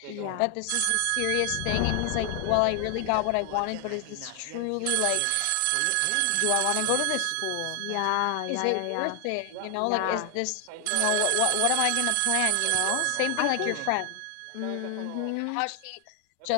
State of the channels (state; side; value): different; both; correlation 0.00